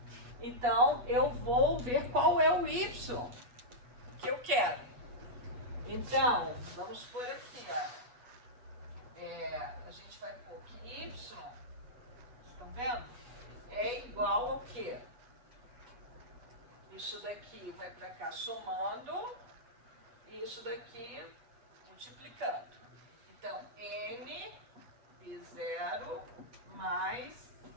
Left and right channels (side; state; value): left; late; 8.2 ms